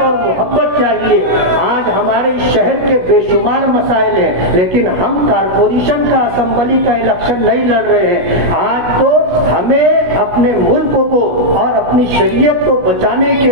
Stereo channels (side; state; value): left; late; 16 ms